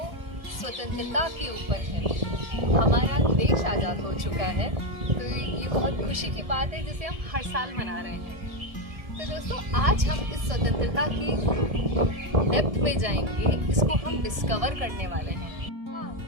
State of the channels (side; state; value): left; late; 1.7 ms